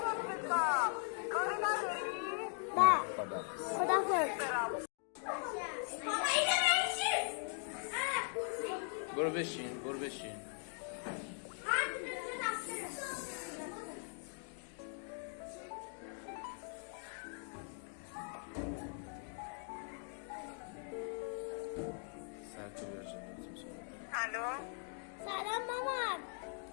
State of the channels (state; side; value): silent; right; 51 dB below the other